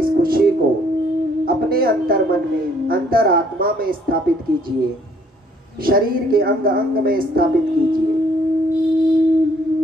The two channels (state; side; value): normal; both; correlation 0.63